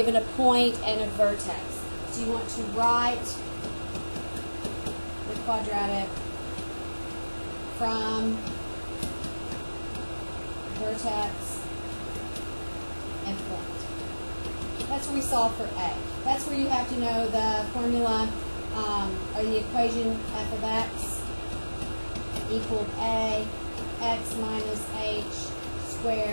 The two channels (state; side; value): inverted; both; correlation -1.00